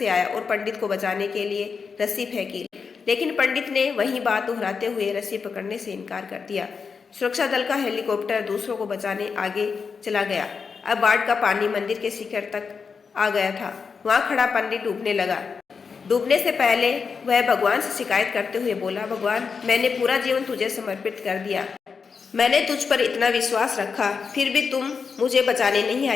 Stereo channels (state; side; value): quieter; right; 5.5 dB